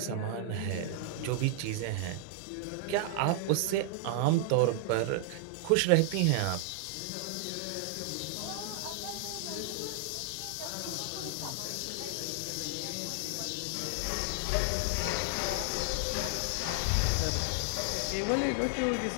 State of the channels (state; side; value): different; both; correlation 0.00